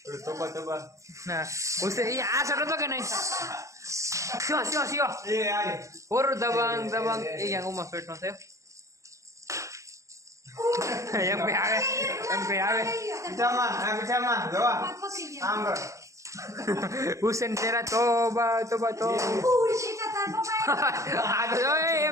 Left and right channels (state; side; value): late; left; 0.15 ms